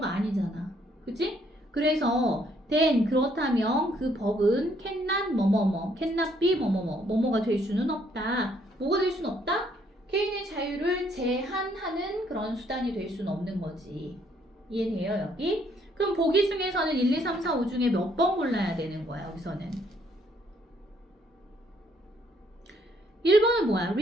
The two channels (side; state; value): both; normal; correlation 0.68